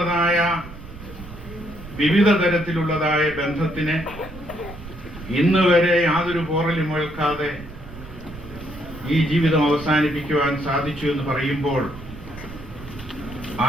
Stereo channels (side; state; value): right; noise; rumble, 16 dB below the sound